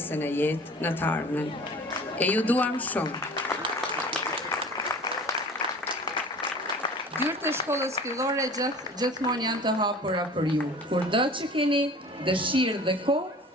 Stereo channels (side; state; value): both; normal; correlation 0.43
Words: në jetë në të ardhmen. E ju duam shumë. Dyert e shkollës fillore gjithmonë janë të hapura për ju. Kurdo që keni dëshirë dhe kohë,